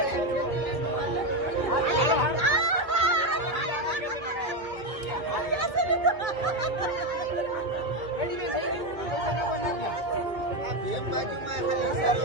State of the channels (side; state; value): left; late; 2.2 ms